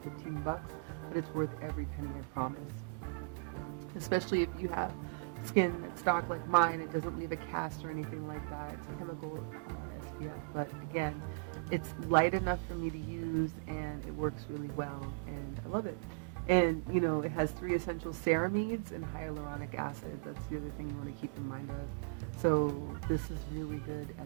15 bucks, but it's worth every penny, I promise. Especially if you have skin that's dark like mine, it doesn't leave a cast or anything like that. It's a chemical SPF, but again, it's light enough for me to use, and it works really well, and I love it. And, you know, it has 3 essential ceramides and hyaluronic acid. That's the other thing you want to keep in mind of. So this is really good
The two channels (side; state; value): left; quieter; 36.4 dB